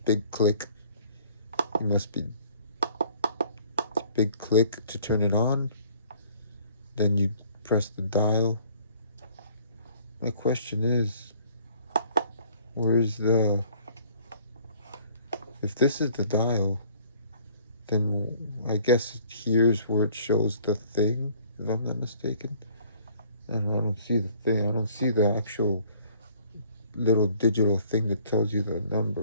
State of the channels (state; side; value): inverted; both; correlation -0.57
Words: big click. You must be big click to turn it on. Then you press the dial. My question is, if this is the dial, then I guess here's where it shows the thing, if I'm not mistaken. And I don't see the thing, I don't see the actual little digital thing that tells you the